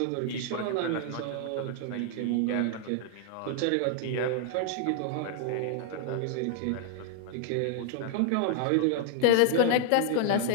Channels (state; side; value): different; both; correlation -0.01